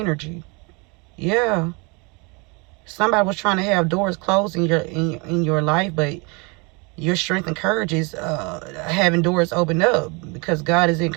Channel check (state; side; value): quieter; left; 30.1 dB